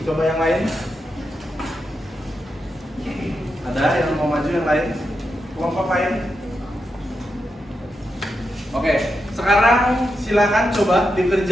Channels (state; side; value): normal; both; correlation 0.86